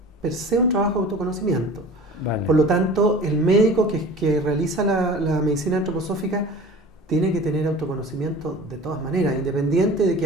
per se un trabajo de autoconocimiento. Vale. Por lo tanto, el médico que realiza la medicina antroposófica tiene que tener autoconocimiento de todas maneras, independiente de que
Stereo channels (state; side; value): normal; both; correlation 0.41